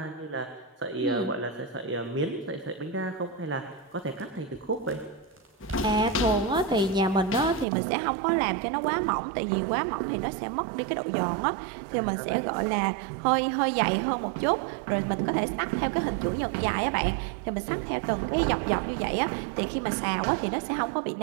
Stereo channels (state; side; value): drops out; left; at 7.7 s